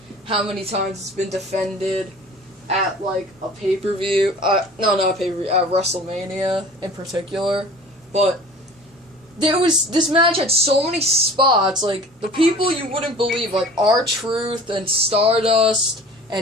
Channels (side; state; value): both; normal; correlation 0.43